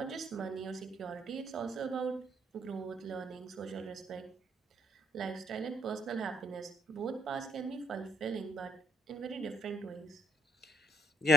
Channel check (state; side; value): normal; both; correlation 0.71